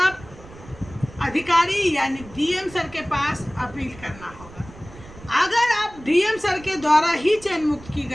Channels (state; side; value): noise; right; rumble, 19 dB below the sound